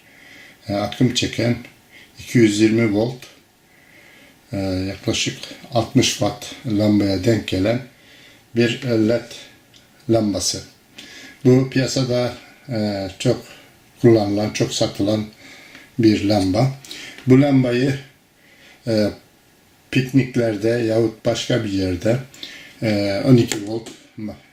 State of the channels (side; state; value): both; identical; correlation 1.00